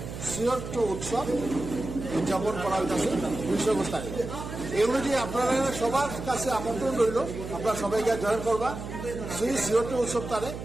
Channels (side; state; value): right; noise; hum, 8 dB below the sound